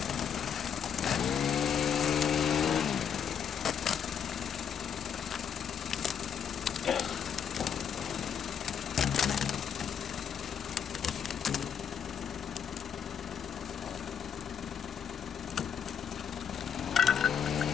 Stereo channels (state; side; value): quieter; right; 7.8 dB